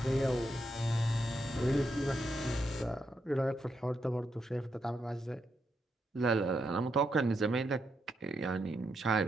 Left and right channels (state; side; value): normal; both; correlation 0.81